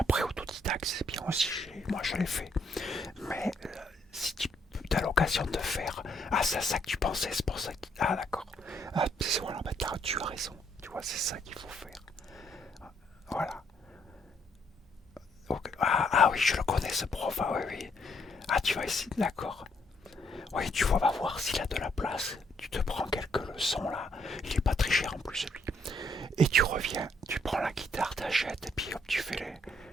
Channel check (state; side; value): normal; both; correlation 0.71